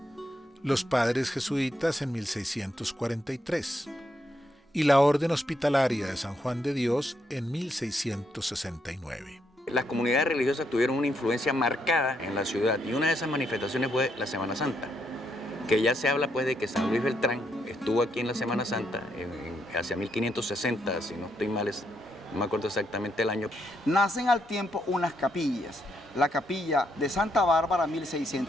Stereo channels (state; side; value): normal; both; correlation 0.77